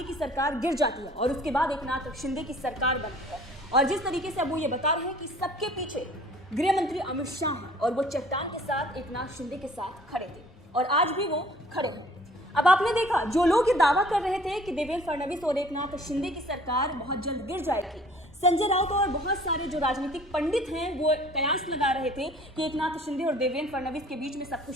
की सरकार गिर जाती है और उसके बाद एकनाथ शिंदे की सरकार बनती है। और जिस तरीके से अब वो ये बता रहे हैं कि सबके पीछे गृह मंत्री अमित शाह हैं और वो चट्टान के साथ एकनाथ शिंदे के साथ खड़े थे और आज भी वो खड़े हैं। अब आपने देखा जो लोग ये दावा कर रहे थे कि देवेंद्र फडणवीस और एकनाथ शिंदे की सरकार बहुत जल्द गिर जाएगी, संजय राउत और बहुत सारे जो राजनीतिक पंडित हैं वो कयास लगा रहे थे कि एकनाथ शिंदे और देवेंद्र फडणवीस के बीच में सब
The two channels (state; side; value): normal; both; correlation 0.52